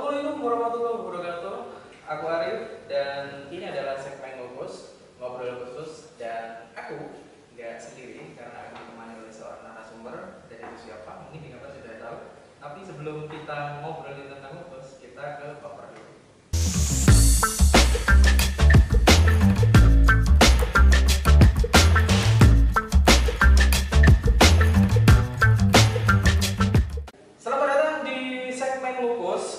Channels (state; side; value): identical; both; correlation 1.00